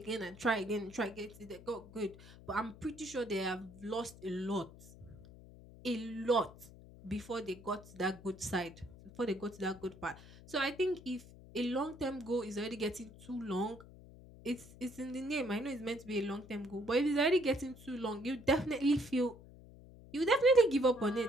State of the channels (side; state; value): left; noise; hum, 19 dB below the sound